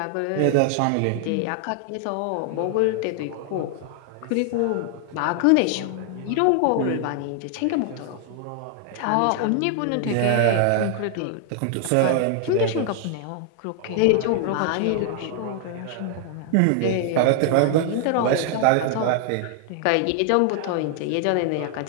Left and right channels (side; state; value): both; different; correlation 0.00